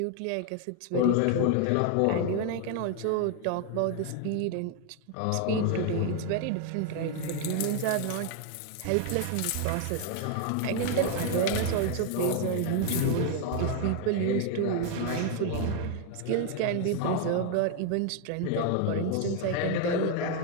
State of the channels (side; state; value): both; different; correlation 0.01